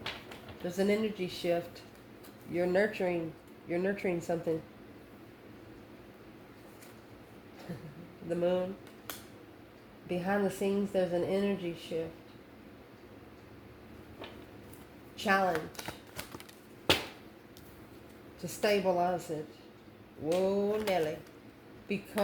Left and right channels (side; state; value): both; identical; correlation 1.00